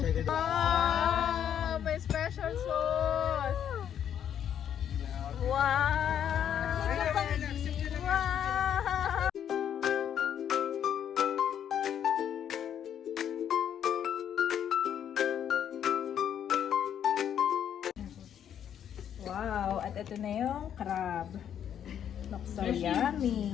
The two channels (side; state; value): right; quieter; 9.4 dB